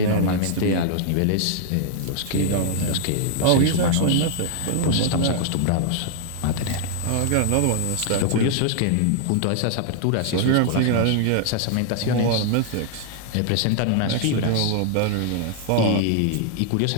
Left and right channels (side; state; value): both; different; correlation 0.00